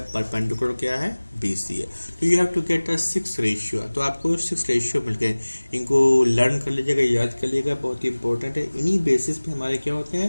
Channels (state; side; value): inverted; both; correlation -1.00